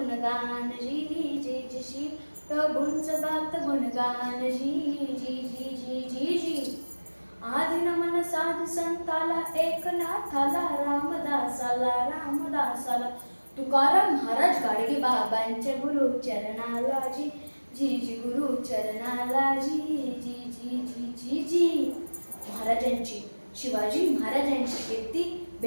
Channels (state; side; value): inverted; both; correlation -1.00